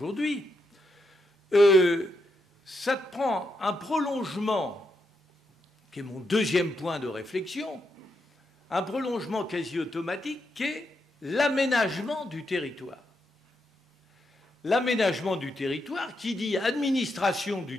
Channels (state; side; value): normal; both; correlation 0.82